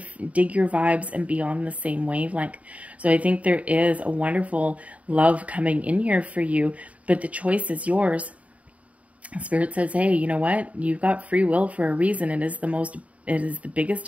dig your vibes and be on the same wavelength. So I think there is a wonderful love coming in here for you, but the choice is yours. Spirit says, hey, you know what? You've got free will for a reason. It is the biggest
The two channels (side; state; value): left; late; 0.067 ms